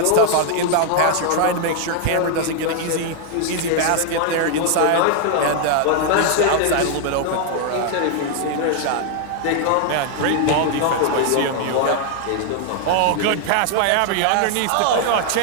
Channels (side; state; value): both; different; correlation 0.00